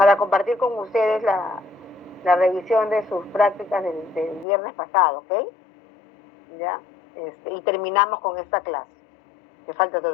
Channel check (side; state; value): right; drops out; at 4.5 s